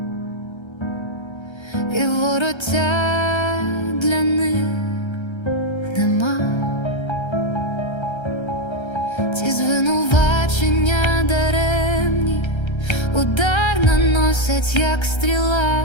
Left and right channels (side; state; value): right; late; 1.3 ms